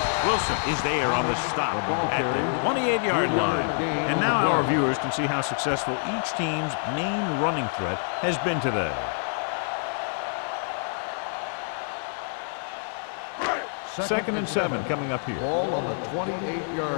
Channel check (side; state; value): right; silent; 60 dB below the other